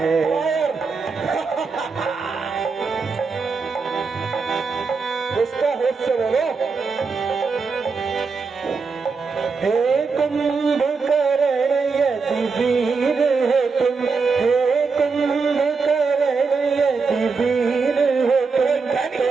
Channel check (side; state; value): left; quieter; 4.8 dB